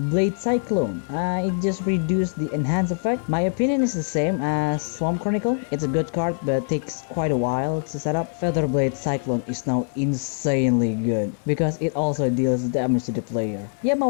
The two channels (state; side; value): silent; right; digital silence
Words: Cyclone. It just reduced the enhance effect. My opinion is the same as Swamp Chronicle. It's a good card, but takes quite a while to set up. Feather Blade Cyclone is now insanely good because it also deals damage to the player.